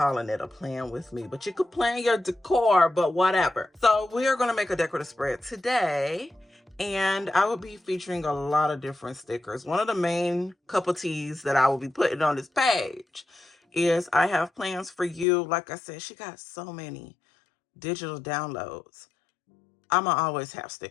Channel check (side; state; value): right; drops out; at 15.2 s